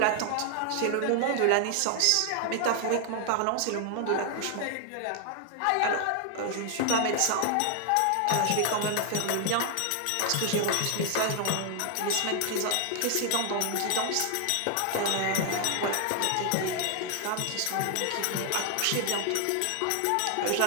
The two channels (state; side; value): different; both; correlation 0.00